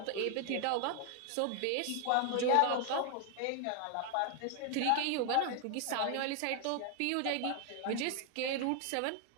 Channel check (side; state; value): both; different; correlation 0.00